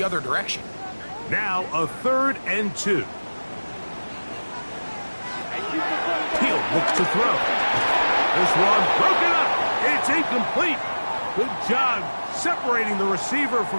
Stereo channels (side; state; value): both; inverted; correlation -1.00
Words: other direction. Now a 3rd and 2. Hill looks to throw. This one broken up. It's incomplete. Good job separating the receiver